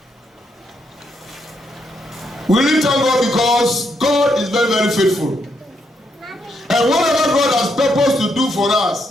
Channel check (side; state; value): both; normal; correlation 0.77